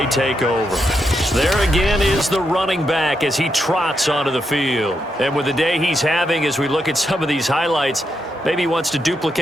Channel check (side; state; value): both; normal; correlation 0.82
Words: take over. There again is the running back as he trots onto the field. And with the day he's having, as we look at some of these highlights, maybe he wants to